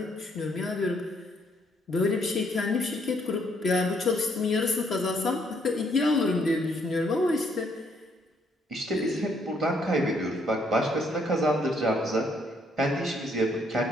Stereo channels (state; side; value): normal; both; correlation 0.70